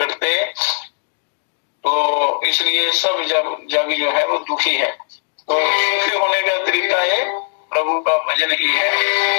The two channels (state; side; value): silent; right; digital silence